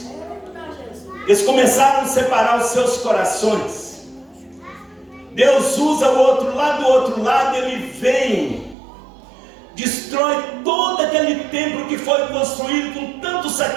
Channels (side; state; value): left; drops out; at 8.8 s